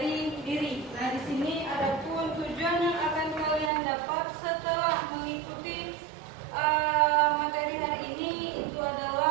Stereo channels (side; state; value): left; drops out; at 3.7 s